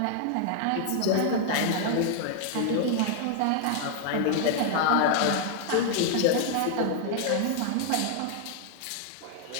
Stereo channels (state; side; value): different; both; correlation 0.00